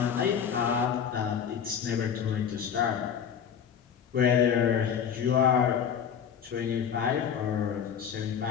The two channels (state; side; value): quieter; right; 7.9 dB